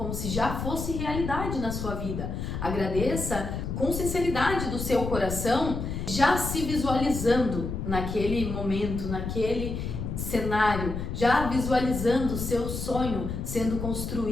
se já fosse realidade na sua vida. Agradeça com sinceridade do seu coração, já se visualizando naquele momento, naquele cenário, já visualizando o seu sonho sendo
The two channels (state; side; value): noise; left; rumble, 4 dB below the sound